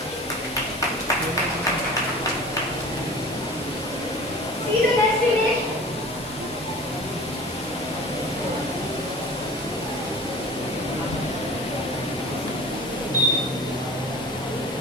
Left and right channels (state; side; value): normal; both; correlation 0.40